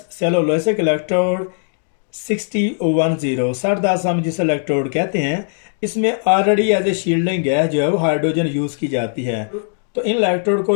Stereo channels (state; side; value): silent; right; digital silence